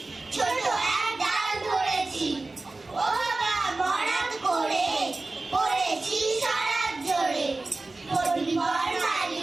ছোট এক ডাল ধরেছি। ও বাবা মরাদ করে পড়েছি সারাত জোরে। পরিবার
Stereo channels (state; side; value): quieter; left; 3.3 dB